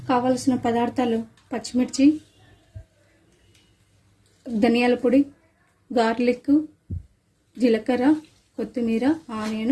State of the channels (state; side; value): identical; both; correlation 1.00